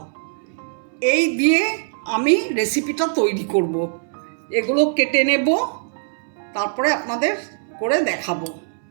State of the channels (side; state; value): left; silent; 64 dB below the other